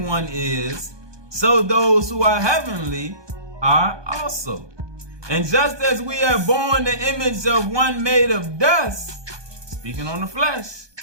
is, so those who are heavenly are also. And just as we have borne the image of one made of dust, speaking on the flesh,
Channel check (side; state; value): left; late; 1.2 ms